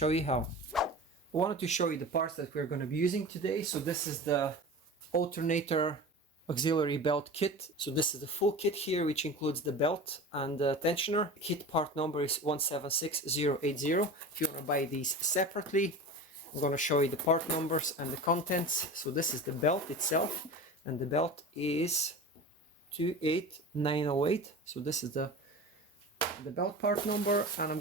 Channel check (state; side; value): normal; both; correlation 0.33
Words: you how. I wanted to show you the parts that we're going to be using today. So this is the alternator auxiliary belt kit. So this is the full kit here, which includes the belt and the tensioner. Kit part number is 176080. If you want to buy these separately, I'm going to show you the part numbers and the contents. So this is the belt itself, and the belt is 28908. So this is the belt part number, and I'm